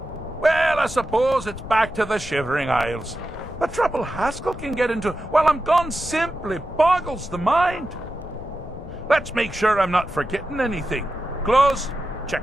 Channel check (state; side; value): noise; left; rumble, 13 dB below the sound